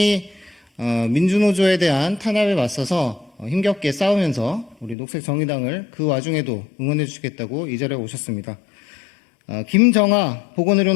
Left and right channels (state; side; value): drops out; right; at 5.0 s